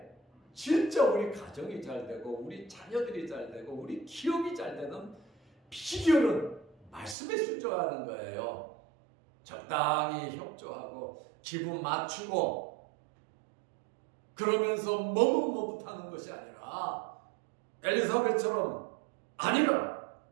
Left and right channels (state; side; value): drops out; left; at 7.2 s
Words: 진짜 우리 가정이 잘 되고 우리 자녀들이 잘 되고 우리 기업이 잘 되는 비결은 말씀에 순종하는 거예요. 적당히 협조하고 기분 맞추고 그러면서 머뭇머뭇하는 것이 아니라 엘리사벳처럼 아니라